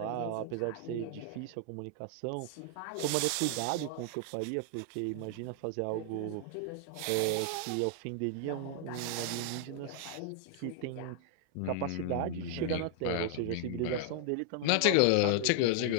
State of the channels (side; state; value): both; different; correlation 0.00